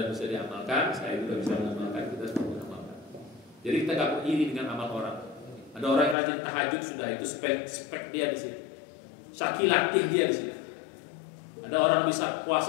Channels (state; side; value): drops out; right; at 6.2 s